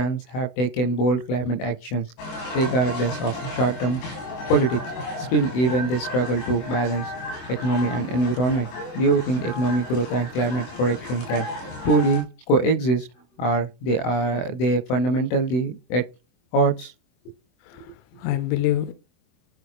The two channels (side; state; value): right; late; 24 ms